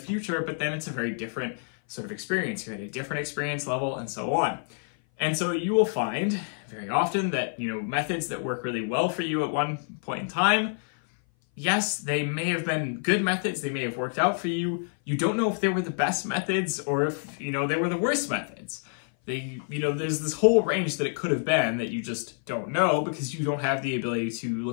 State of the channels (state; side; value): silent; right; 57 dB below the other